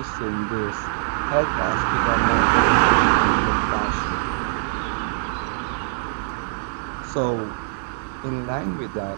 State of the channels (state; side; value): silent; left; digital silence